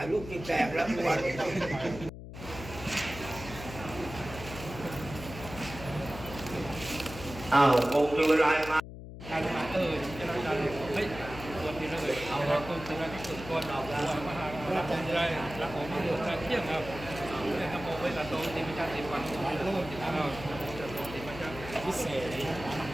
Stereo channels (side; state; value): left; noise; hum, 12 dB below the sound